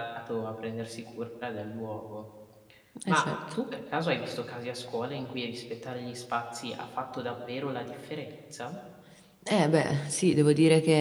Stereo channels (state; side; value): identical; both; correlation 1.00